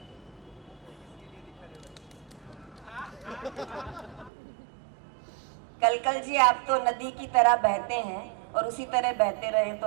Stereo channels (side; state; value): left; drops out; at 4.3 s